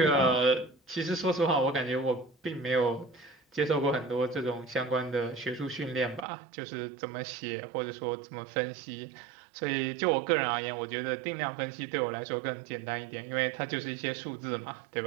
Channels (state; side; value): drops out; left; at 6.2 s